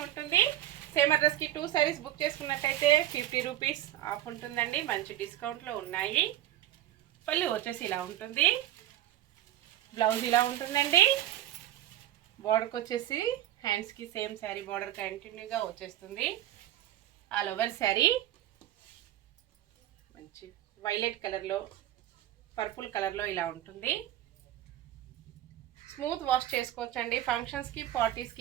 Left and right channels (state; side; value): quieter; left; 13.3 dB